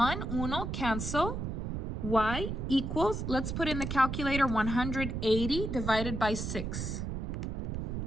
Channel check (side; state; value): right; noise; rumble, 3 dB below the sound